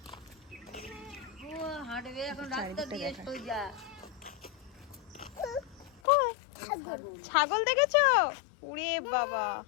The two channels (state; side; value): drops out; right; at 6.0 s